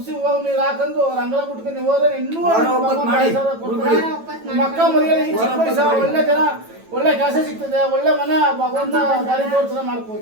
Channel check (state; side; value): late; left; 9.1 ms